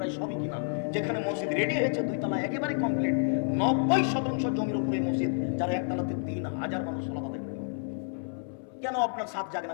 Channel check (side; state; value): right; silent; 58 dB below the other